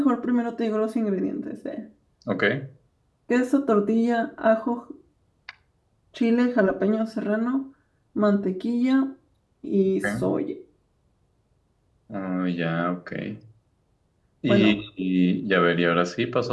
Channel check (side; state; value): both; identical; correlation 1.00